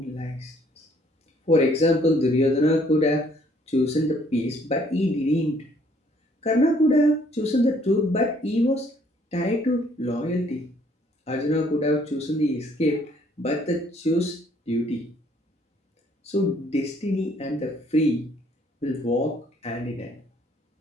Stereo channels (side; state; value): both; normal; correlation 0.63